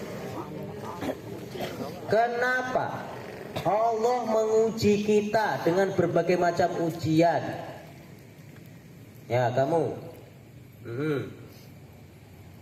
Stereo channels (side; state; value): both; identical; correlation 1.00